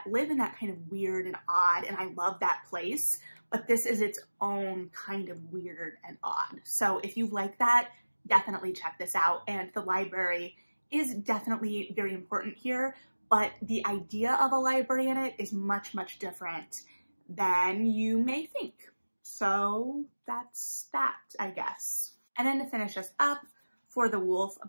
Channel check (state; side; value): inverted; both; correlation -1.00